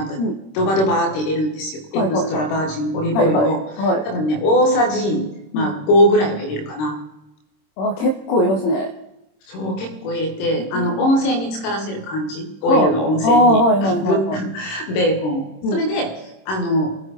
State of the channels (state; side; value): late; right; 26 ms